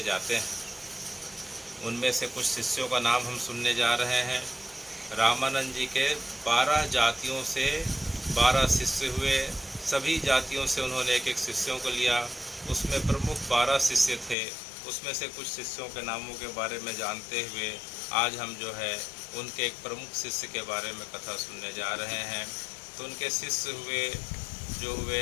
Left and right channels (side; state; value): right; drops out; at 14.4 s